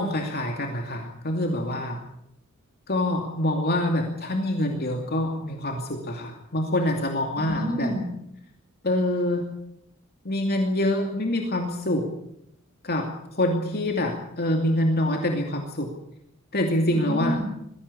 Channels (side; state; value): both; normal; correlation 0.46